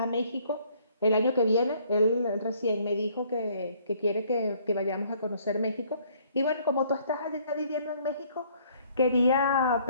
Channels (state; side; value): inverted; both; correlation -0.62